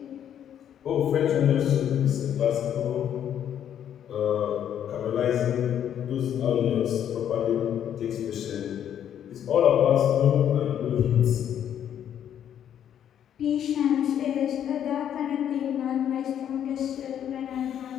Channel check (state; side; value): quieter; right; 9.7 dB